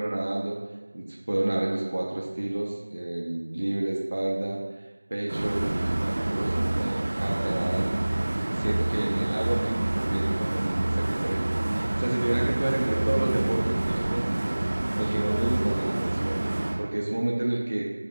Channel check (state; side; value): inverted; both; correlation -1.00